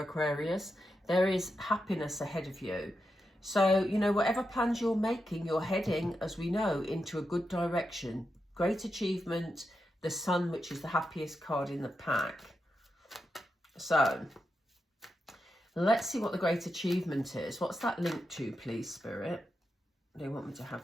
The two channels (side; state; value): both; normal; correlation 0.87